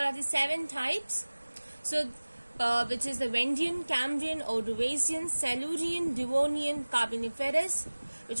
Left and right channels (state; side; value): inverted; both; correlation -1.00